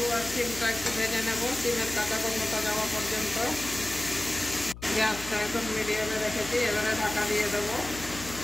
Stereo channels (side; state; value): left; noise; hum, 14 dB below the sound